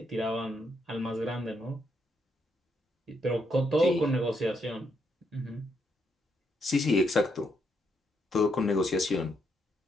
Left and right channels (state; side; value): normal; both; correlation 0.77